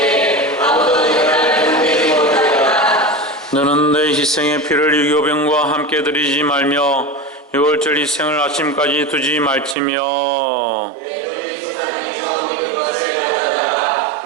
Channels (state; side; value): drops out; left; at 9.8 s